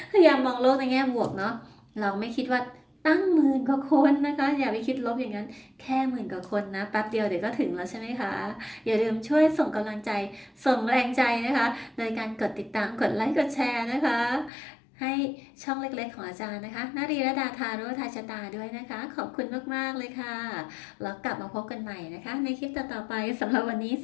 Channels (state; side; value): drops out; right; at 14.5 s